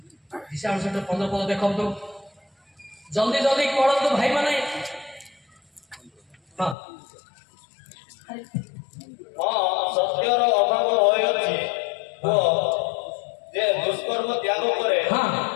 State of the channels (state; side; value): drops out; right; at 6.8 s